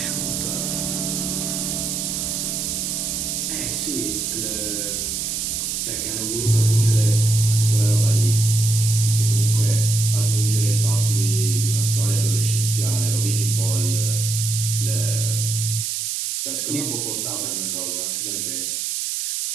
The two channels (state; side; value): noise; right; hiss, 2 dB below the sound